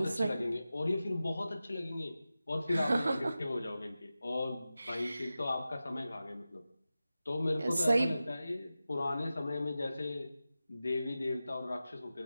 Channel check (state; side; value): inverted; both; correlation -0.94